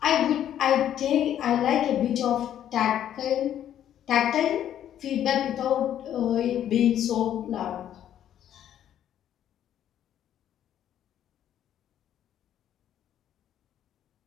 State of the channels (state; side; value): quieter; right; 10.7 dB